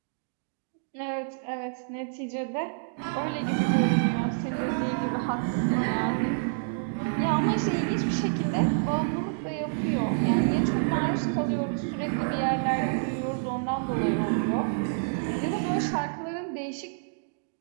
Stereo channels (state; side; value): silent; left; digital silence